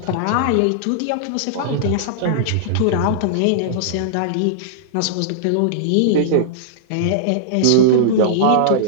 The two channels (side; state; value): both; different; correlation -0.02